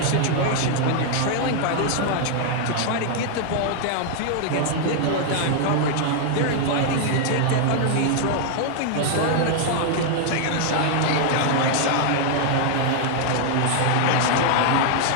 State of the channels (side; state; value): both; different; correlation 0.00